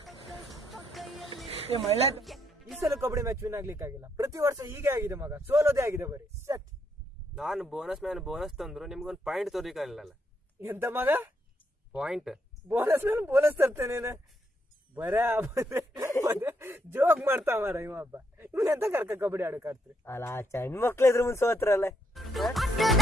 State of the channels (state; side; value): normal; both; correlation 0.76